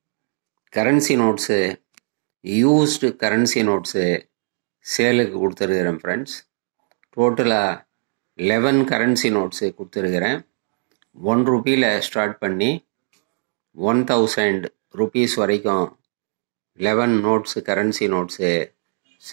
currency notes, used currency notes சேலுக்கு கொடுத்துருக்கிறேன் friends. டோட்டலாக 11 கரன்சி நோட்ஸு கொடுத்துருக்கிறேன். ₹1 ஸ்டார்ட் பண்ணி 1000 rupees வரைக்கும் 11 நோட்ஸு கரன்சி நோட்ஸு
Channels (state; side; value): silent; left; digital silence